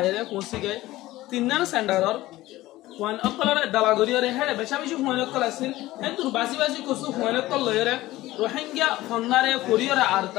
kunsi ge tinnar sendaror wan akkalare dalagoriyore hele beshabishi huanok kalasin entur basi kusu huanok kolloyore Rohingya fonnare koriyore ar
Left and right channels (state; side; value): quieter; right; 17.1 dB